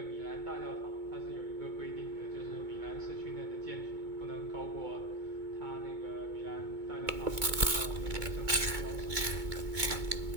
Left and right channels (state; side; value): late; left; 2.2 ms